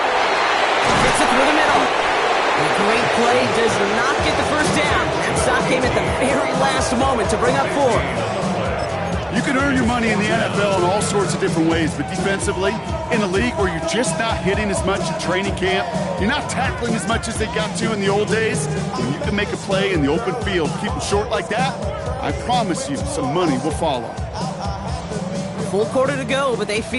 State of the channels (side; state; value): both; identical; correlation 1.00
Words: Gets it through the middle. A great play does not get the 1st down. That stop came at the very last moment to bring up 4. You can earn your money in the NFL in all sorts of different ways, but defensively, in a league where you're just not hitting as much in training camp, you're not tackling as much as they got to in the old days, when you can make a play in the open field, keep them short like that, I promise you some money will follow. Full quarter to go, but they